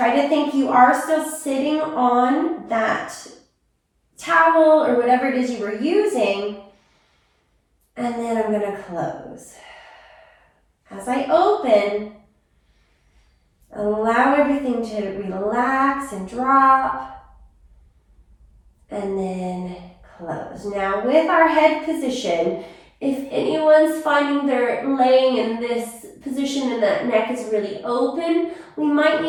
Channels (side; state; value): both; identical; correlation 1.00